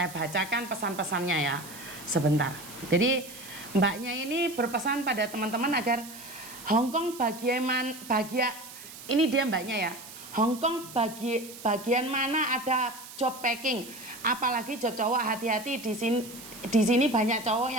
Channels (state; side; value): noise; right; hiss, 15 dB below the sound